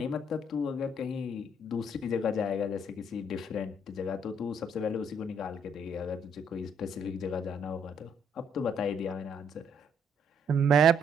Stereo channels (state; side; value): normal; both; correlation 0.69